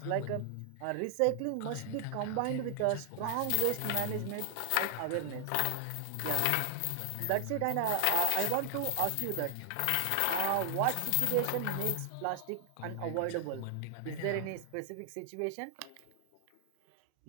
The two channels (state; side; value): different; both; correlation 0.00